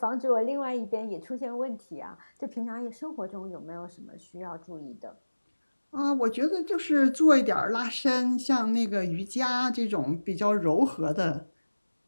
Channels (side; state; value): both; inverted; correlation -1.00